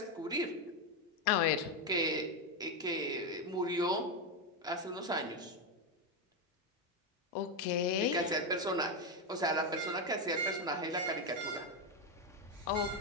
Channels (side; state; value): both; normal; correlation 0.08